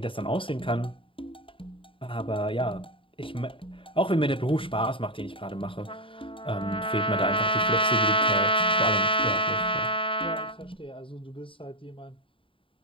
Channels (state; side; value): late; right; 0.25 ms